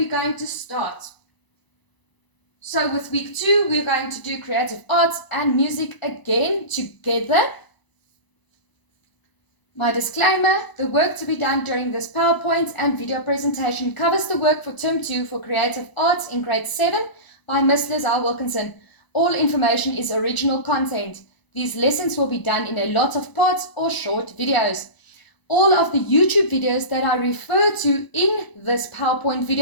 going to start. So with week 2 we're going to do creative arts and music again together. My disclaimer, the work to be done during this PowerPoint and video presentation covers the work for term 2 for creative arts in grade 7 by Miss Lizelle Wilkinson. All information is original content. These lessons will be done in a lot of parts or short videos. All of the YouTube videos that I refer to in this PowerPoint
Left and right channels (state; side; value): late; right; 1.0 ms